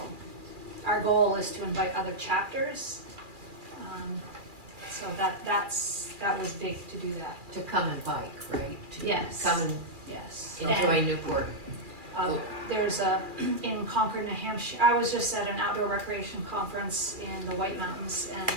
our goal is to invite other chapters. So that was big to do that. To come and bike, right? To Yes. come and Yes. enjoy And, Newport. There's in Concord, New Hampshire, I was just at an outdoor recreation conference in the White Mountains, and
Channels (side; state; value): left; late; 2.4 ms